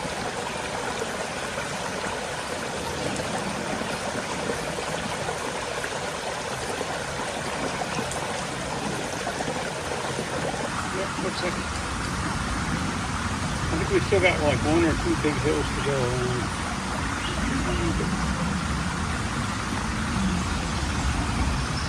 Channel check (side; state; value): both; identical; correlation 1.00